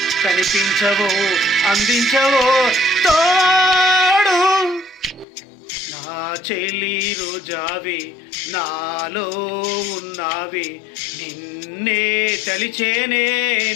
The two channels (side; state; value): right; drops out; at 5.2 s